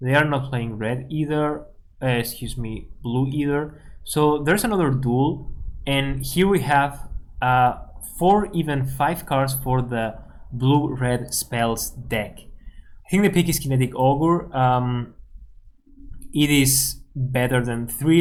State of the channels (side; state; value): both; identical; correlation 1.00